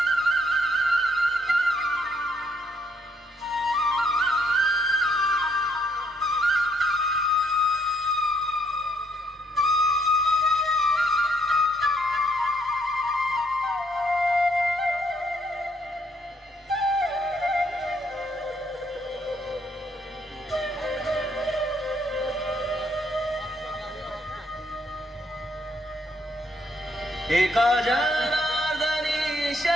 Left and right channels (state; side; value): normal; both; correlation 0.70